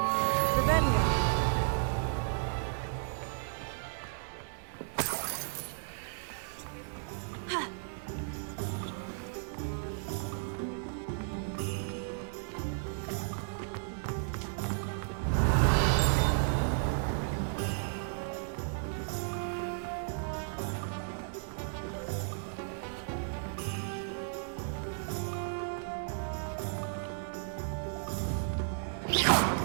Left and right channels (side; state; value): left; silent; 55 dB below the other